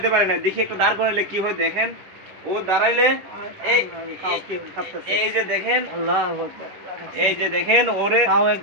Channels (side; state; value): left; late; 11 ms